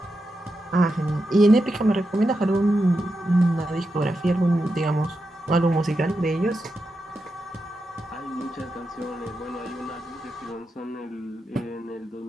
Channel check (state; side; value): normal; both; correlation 0.87